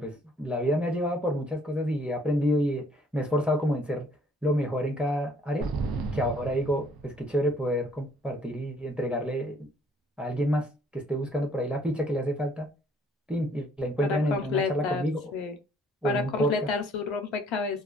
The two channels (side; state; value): both; normal; correlation 0.61